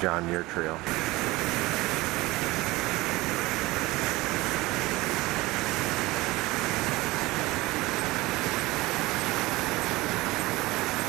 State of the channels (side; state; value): left; quieter; 20.3 dB